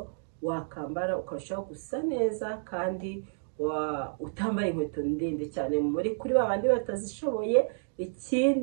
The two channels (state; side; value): silent; left; digital silence